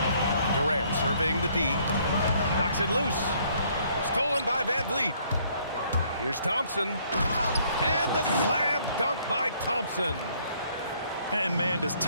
Durant surveying the D. Knocks it loose. Stolen by Van Vliet. Here's Thompson. And the slam dunk by Thompson. And man, does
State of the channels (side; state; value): both; inverted; correlation -0.64